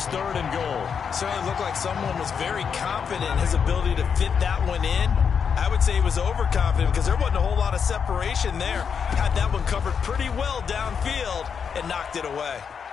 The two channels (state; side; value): quieter; right; 6.7 dB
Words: 3rd and goal. Certainly looked like someone was very confident in his ability to fit that one in. I would say he was overconfident because there wasn't a whole lot of separation there. Had that one covered pretty well downfield and knocked it away.